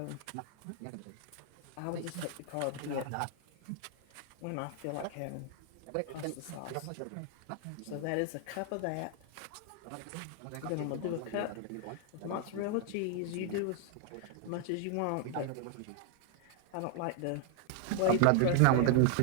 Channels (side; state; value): both; different; correlation 0.00